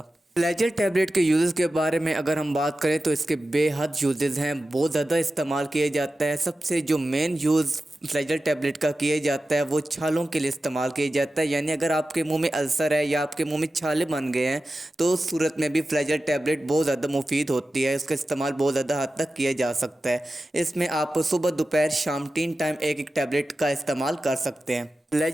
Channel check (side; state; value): both; normal; correlation 0.94